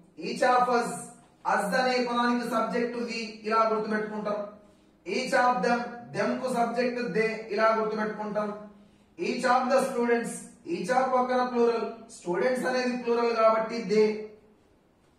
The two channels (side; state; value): both; identical; correlation 1.00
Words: ఈచ్ ఆఫ్ అస్ అనే పదానికి సబ్జెక్ట్ వి, ఇలా గుర్తుపెట్టుకుంటాం. ఈచ్ ఆఫ్ దెమ్ కు సబ్జెక్ట్ దే, ఇలా గుర్తుపెట్టుకుంటాం. Each of the students, each of పక్కన ప్లూరల్, స్టూడెంట్స్ అనేది ప్లూరల్ కాబట్టి దే.